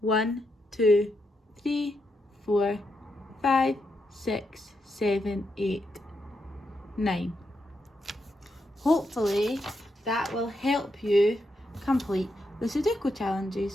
1, 2, 3, 4, 5, 6, 7, 8, 9. Hopefully that will help you complete the Sudoku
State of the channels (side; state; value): both; normal; correlation 0.83